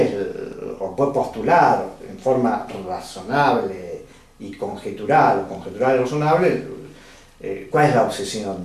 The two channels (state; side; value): identical; both; correlation 1.00